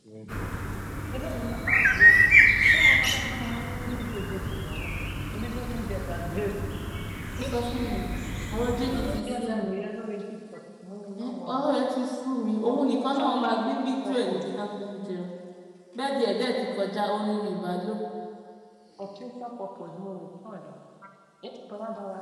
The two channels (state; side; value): identical; both; correlation 1.00